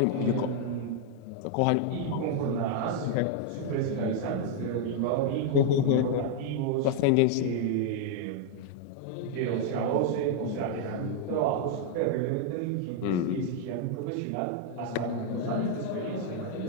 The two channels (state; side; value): different; both; correlation 0.00